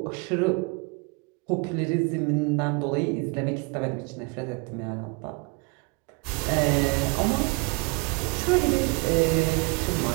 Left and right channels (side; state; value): left; quieter; 29.4 dB